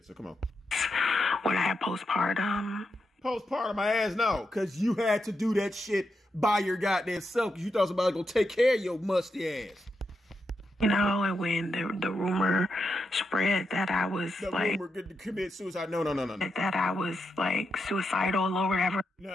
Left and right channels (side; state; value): both; normal; correlation 0.85